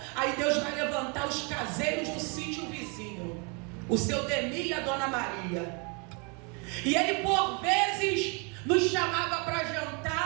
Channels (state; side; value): quieter; left; 33.7 dB